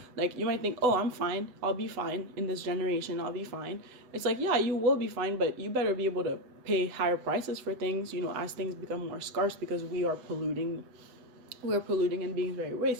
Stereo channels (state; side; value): late; left; 8.0 ms